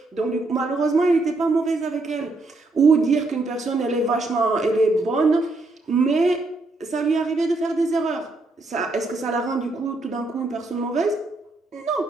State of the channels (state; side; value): quieter; left; 3.1 dB